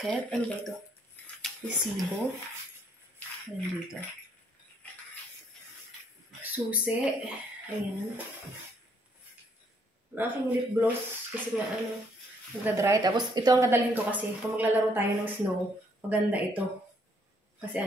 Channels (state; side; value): normal; both; correlation 0.68